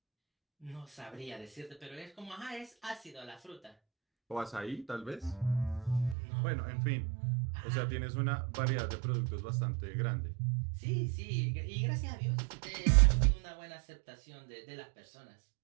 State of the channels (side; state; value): left; drops out; at 6.2 s